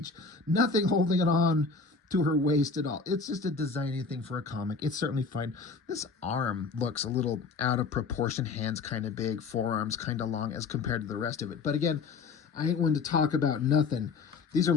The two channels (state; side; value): quieter; right; 4.5 dB